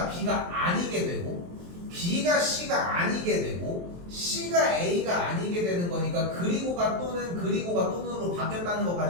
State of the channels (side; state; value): left; late; 23 ms